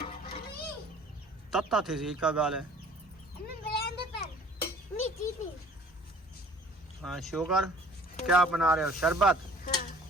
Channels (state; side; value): normal; both; correlation 0.51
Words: तत्ता थी हिका गाले। हाँ, शुगर क्या बना रहे हो? शरबत?